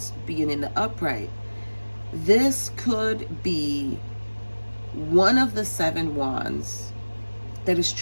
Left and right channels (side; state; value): both; inverted; correlation -1.00